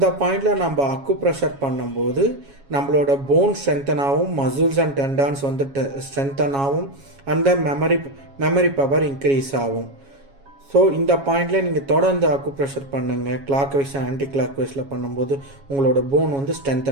பாயிண்டில் நம்ம அக்குப்ரெஷர் பண்ணும்போது நம்மளோட போன் ஸ்ட்ரென்தன் ஆகும், மசில்ஸ் அண்ட் டெண்டான்ஸ் ஸ்ட்ரென்தன் ஆகும், அந்த மெமரி பவர் இன்க்ரீஸ் ஆகும். ஸோ இந்த பாயிண்டில் நீங்கள் தொடர்ந்து அக்குப்ரெஷர் பண்ணுங்கள். கிளாக் வைஸ் ஆன்டி கிளாக் வைஸில் பண்ணும்போது உங்களோட போன்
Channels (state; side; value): late; left; 7.3 ms